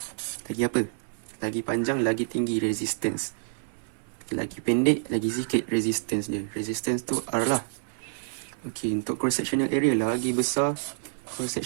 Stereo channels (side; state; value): left; silent; digital silence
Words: apa? Lagi panjang, lagi tinggi resistance. Lagi pendek, lagi sikit resistance dia. Resistance tu R lah. Okay, untuk cross-sectional area, lagi besar